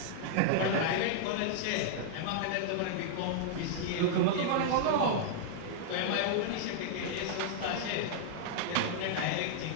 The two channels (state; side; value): different; both; correlation -0.01